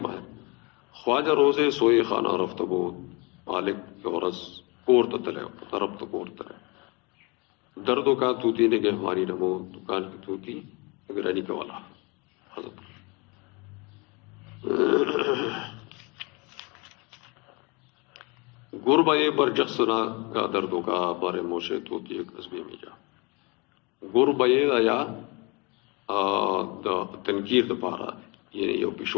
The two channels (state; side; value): quieter; right; 28.3 dB